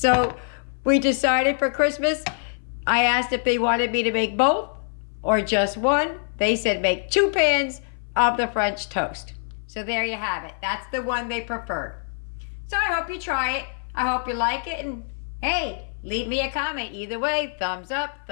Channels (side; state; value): right; silent; 57 dB below the other